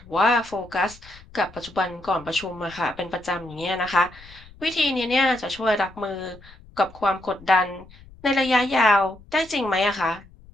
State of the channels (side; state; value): left; noise; rumble, 22 dB below the sound